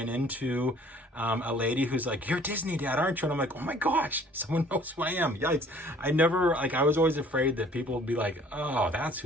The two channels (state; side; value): normal; both; correlation 0.55